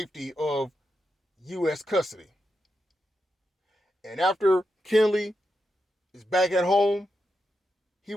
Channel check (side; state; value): both; normal; correlation 0.86